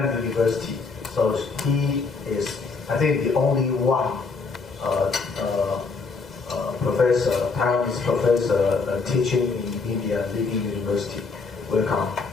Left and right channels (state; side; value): quieter; right; 4.4 dB